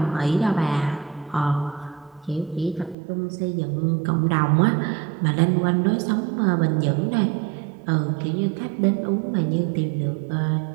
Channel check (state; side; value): drops out; left; at 3.0 s